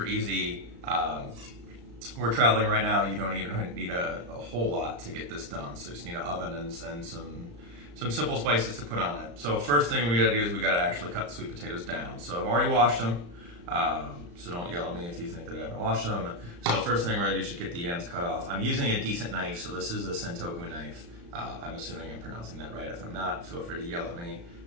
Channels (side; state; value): left; late; 35 ms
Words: easy. We're traveling right now. You don't even need a whole lot to get this done. So you just need an oven and some simple spices to put on it. So first thing we gotta do is we gotta actually cut the sweet potatoes down. So I've already washed them. So don't yell at me if you think that I haven't washed them. So first thing we're gonna do is just get the ends cut off. I'm using a decent knife, so this is a Sentoku knife. I'm assuming I'm pronouncing that right. If I'm not, feel free to yell at me